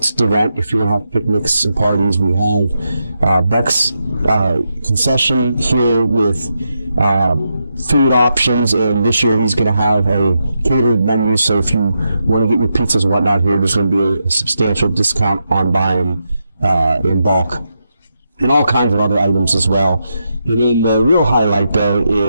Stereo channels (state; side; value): inverted; both; correlation -0.85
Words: to rent if you want to have picnics and parties. We have Beck's concession here with food options, and this year he's going to have a catered menu. So if you want to get your pizzas and whatnot here, there's going to be a substantial discount on buying in bulk. And all kinds of other items as well. And then the real highlight, though,